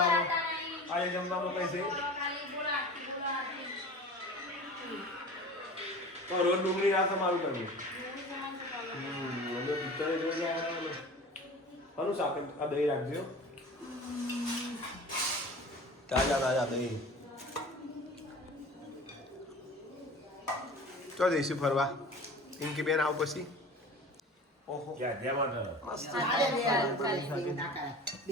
આજે જમવામાં કઈ છે તો રોજ ડુંગળી ના તમારું કરવું. પિક્ચર જોઈ જાય કોનું શાક આ દહીં રાખજો તાજા દહીં. ચો જઈશું ફરવા પિંકી બેન આવ પછી. ઓહો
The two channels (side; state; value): both; normal; correlation 0.39